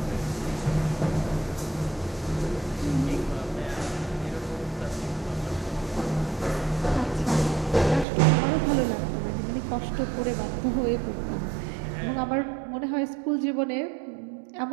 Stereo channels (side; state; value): left; drops out; at 8.1 s